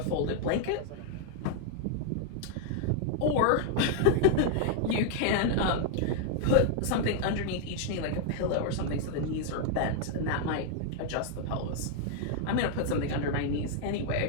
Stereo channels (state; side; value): different; both; correlation 0.00